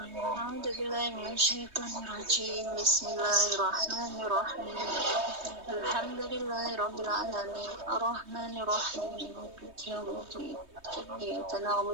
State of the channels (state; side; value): late; left; 3.2 ms